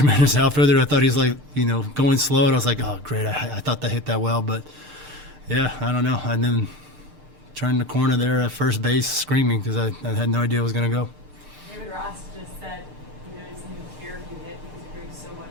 outfielder. I thought he's going slow, and I was like, oh great, I thought that hit that well, but yeah, I don't know. And then turned the corner there at first base screaming because I had no idea it was going to go. David Ross just said there's a new care unit because it brings so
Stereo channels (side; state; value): left; late; 7.7 ms